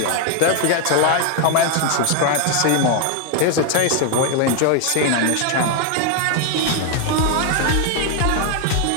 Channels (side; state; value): both; different; correlation 0.01